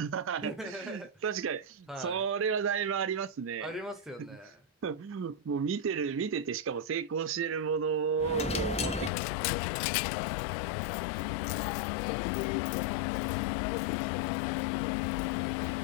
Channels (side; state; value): right; drops out; at 9.1 s